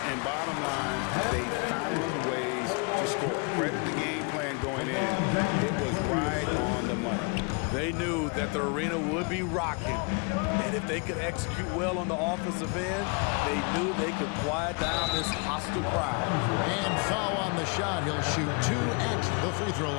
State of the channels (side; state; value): right; quieter; 34.1 dB